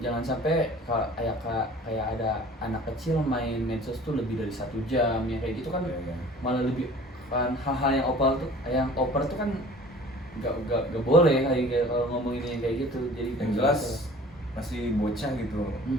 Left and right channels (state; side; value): normal; both; correlation 0.47